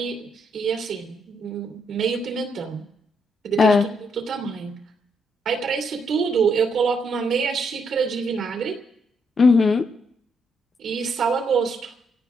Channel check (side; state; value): both; normal; correlation 0.76